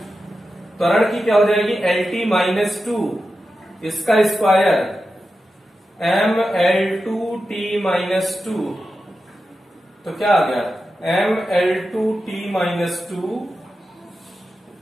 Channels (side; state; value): both; normal; correlation 0.91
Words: त्वरण की क्या हो जाएगी LT-2, इसका स्क्वायर mL2T-2। तो क्या आ गया mL2T-2,